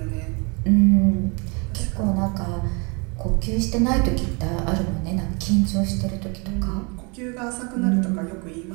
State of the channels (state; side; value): quieter; left; 31.7 dB